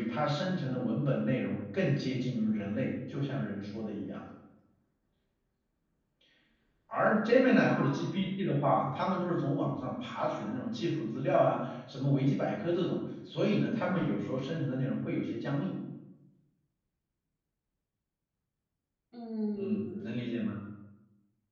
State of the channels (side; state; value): both; identical; correlation 1.00